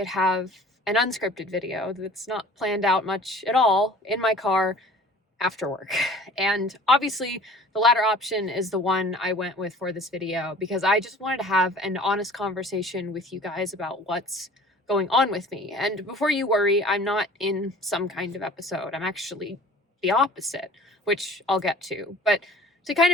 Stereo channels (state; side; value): normal; both; correlation 0.46